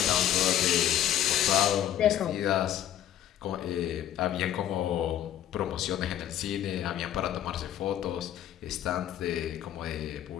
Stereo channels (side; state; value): right; quieter; 11.3 dB